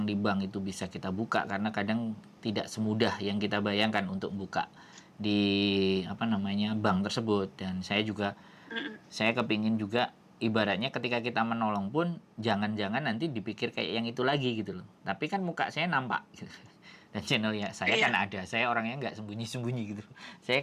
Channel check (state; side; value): identical; both; correlation 1.00